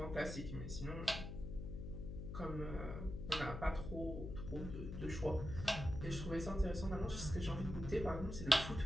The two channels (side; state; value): left; noise; hum, 6 dB below the sound